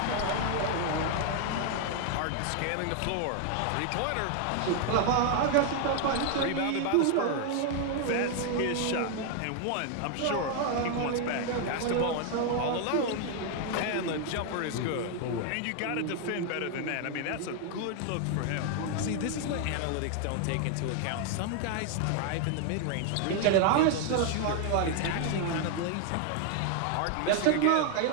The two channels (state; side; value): different; both; correlation 0.00